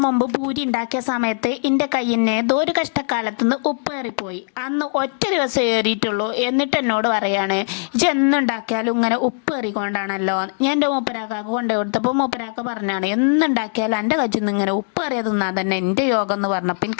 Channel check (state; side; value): silent; right; digital silence